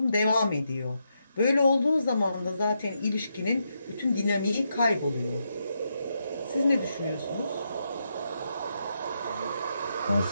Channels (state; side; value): inverted; both; correlation -0.82